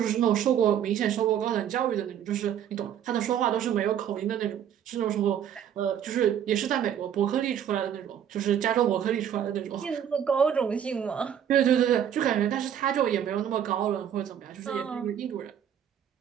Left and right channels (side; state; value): left; quieter; 9.4 dB